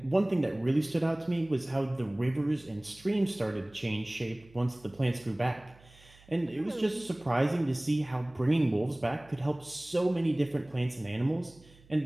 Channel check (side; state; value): right; noise; hum, 26 dB below the sound